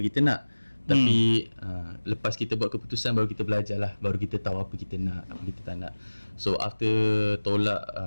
kita nak, tapi lepas kita buat keputusan baru kita belajar lah, baru kita tahu apa kita nak, apa kita tak nak. So after tolak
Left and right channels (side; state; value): both; inverted; correlation -1.00